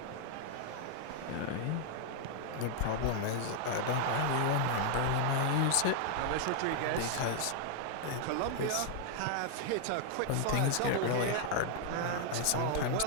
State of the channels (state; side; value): different; both; correlation 0.00